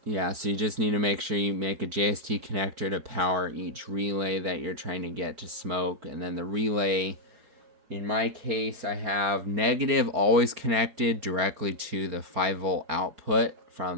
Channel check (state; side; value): late; left; 4.8 ms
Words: yeah, so you just need to make sure you make a JST connector to power each relay that you're trying to get to smoke. And then the relay, in my case, I have negative always connected directly to the 5-volt output